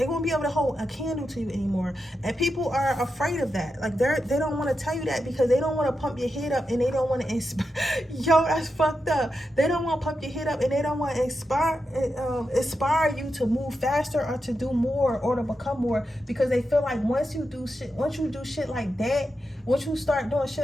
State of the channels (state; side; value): normal; both; correlation 0.88